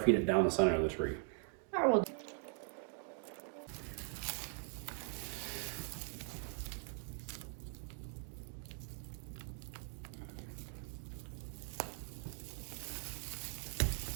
it down the center of the tree. I will.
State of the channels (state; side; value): silent; left; 50 dB below the other